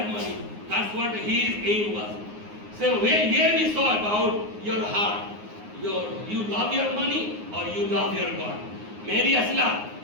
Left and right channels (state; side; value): late; left; 9.6 ms